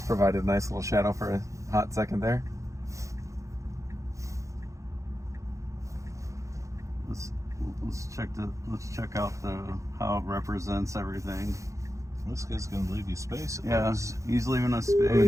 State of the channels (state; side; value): late; left; 0.15 ms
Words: provided a nice little shadow for a hot second there. Let's check out how it represents everything. This guy's gonna leave you space. He's leaving us I